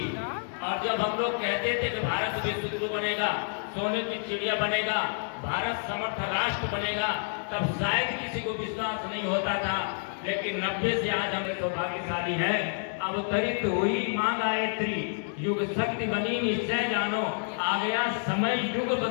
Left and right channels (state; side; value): silent; right; digital silence